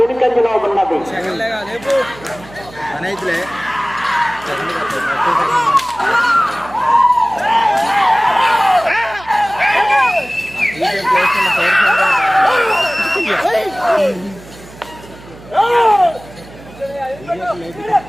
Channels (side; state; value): right; noise; hum, 20 dB below the sound